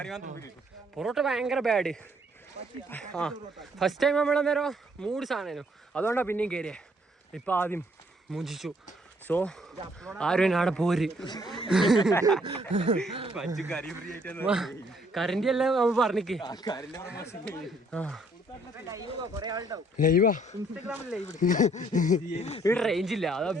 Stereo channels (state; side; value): normal; both; correlation 0.66